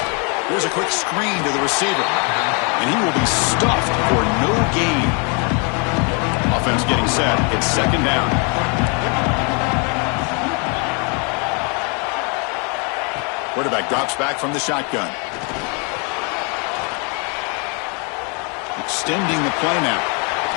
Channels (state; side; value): quieter; right; 35.0 dB